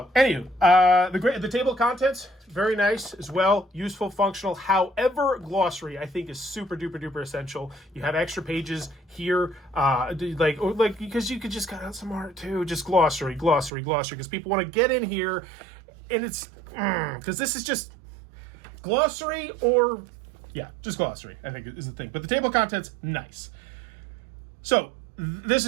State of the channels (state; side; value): drops out; left; at 13.7 s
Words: anywho, the table of contents, very nice as well. Useful, functional. However, glossary, I think, is super duper duper essential. You have extra pages here, because you could just cut out some art too. Just glossary, because people want to get in here. And it's, because this is just glossary just glossary, I think is the thing. But the table of contents, nice. So, this